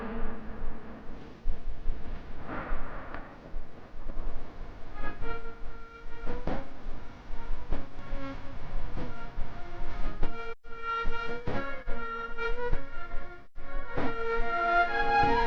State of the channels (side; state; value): both; identical; correlation 1.00